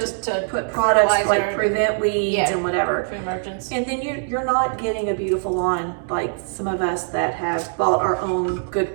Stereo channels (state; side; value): silent; left; 64 dB below the other